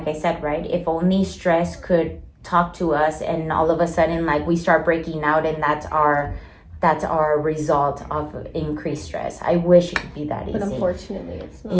I said, right? If only stress could talk to us, and all of a sudden, like, we start breaking out, and that's our result of increased stress. I wish it could be that easy. But unfortunately, it's not.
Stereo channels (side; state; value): both; identical; correlation 1.00